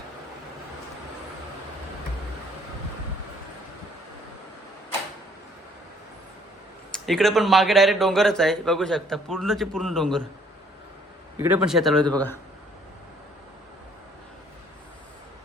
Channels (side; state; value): both; normal; correlation 0.62